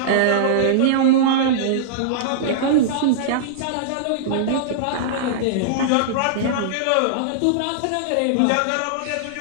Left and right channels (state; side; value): different; both; correlation -0.02